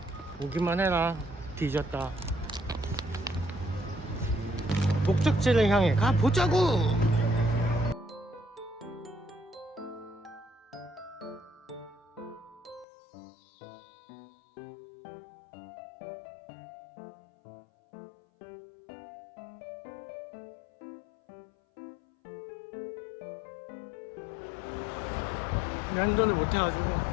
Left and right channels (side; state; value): right; drops out; at 12.9 s